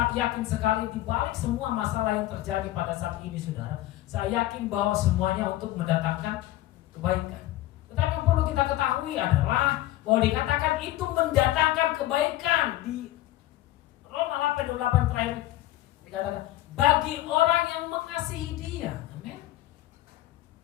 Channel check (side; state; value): right; quieter; 15.5 dB